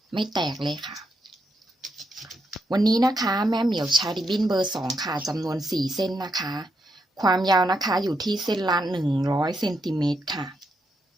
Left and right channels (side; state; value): both; normal; correlation 0.81